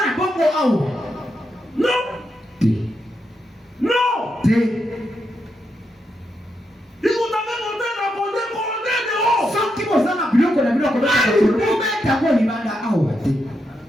na bongo awa. Non. Te. Non. Te. Ikutaka monte na konde de o. Soki bozana biloko na biloko obeta ko libanda awa te.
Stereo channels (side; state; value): both; normal; correlation 0.83